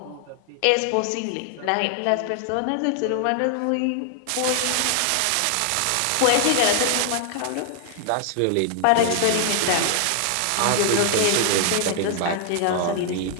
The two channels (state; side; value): different; both; correlation 0.00